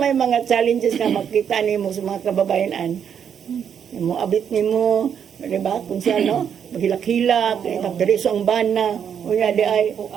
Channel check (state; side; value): quieter; left; 8.0 dB